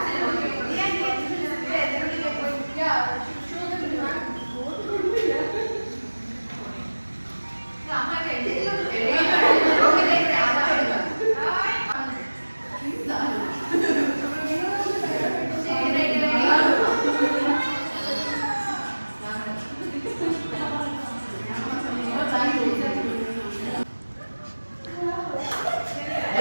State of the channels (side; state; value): both; inverted; correlation -1.00